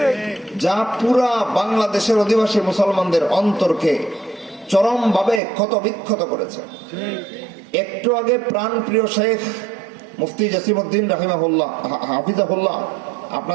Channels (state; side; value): drops out; left; at 5.4 s